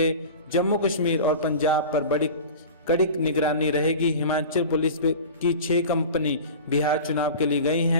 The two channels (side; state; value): both; inverted; correlation -0.35